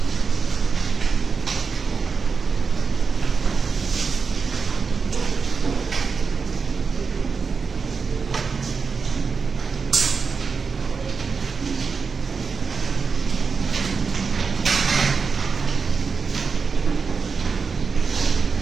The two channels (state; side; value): quieter; left; 5.2 dB